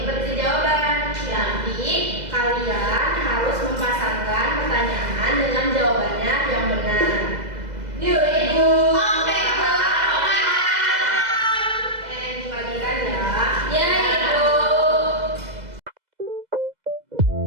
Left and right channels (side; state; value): left; late; 2.0 ms